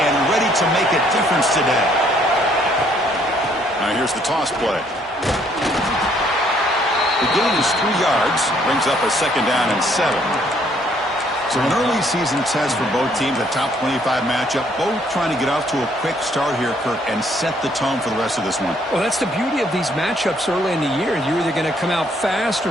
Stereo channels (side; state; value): both; normal; correlation 0.66